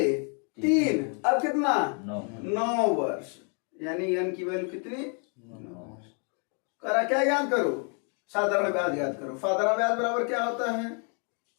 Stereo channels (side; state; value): right; quieter; 39.9 dB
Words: 3, अब कितना 9 वर्ष, यानी एन की वैल्यू कितनी 9। कह रहा क्या याद करो, साधारण ब्याज याद करो। साधारण ब्याज बराबर क्या होता है